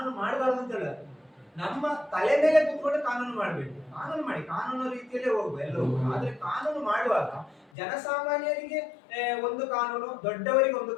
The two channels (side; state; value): right; drops out; at 7.7 s